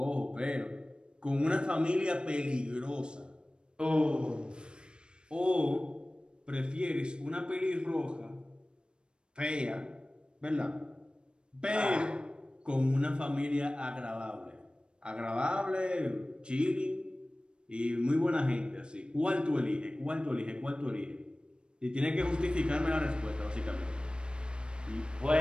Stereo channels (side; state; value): left; late; 0.054 ms